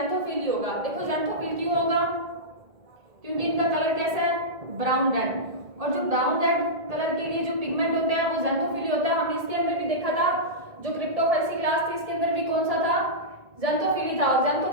ही होगा। देखो ज़ैंथोफिल क्यों होगा, क्योंकि इनका कलर कैसा है, ब्राउन रेड, और जो ब्राउन रेड कलर के लिए जो पिगमेंट होता है वो ज़ैंथोफिल होता है। हमने इसके अंदर भी देखा था, जो क्रिप्टोफाइसी क्लास थी इसके अंदर भी कौन सा था, ज़ेंथोफिली था, और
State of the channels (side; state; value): left; late; 1.9 ms